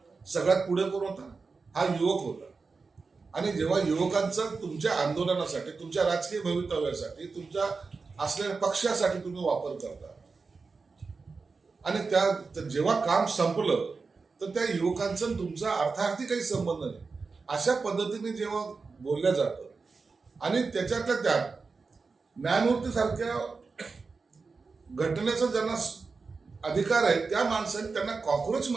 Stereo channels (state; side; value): quieter; left; 4.4 dB